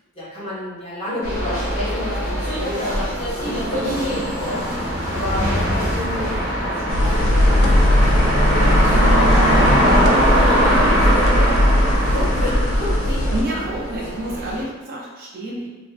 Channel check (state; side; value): normal; both; correlation 0.60